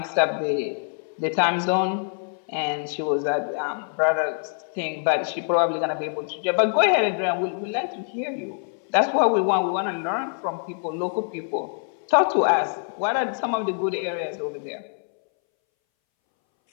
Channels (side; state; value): right; silent; 62 dB below the other